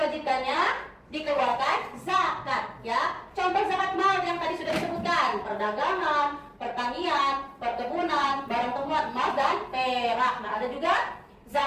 dikeluarkan zakat ya. Contoh zakat mal yang tadi sudah disebutkan, perdagangan, pertanian, perkebunan, barang temuan emas dan perak. Nah, ada juga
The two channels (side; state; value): both; identical; correlation 1.00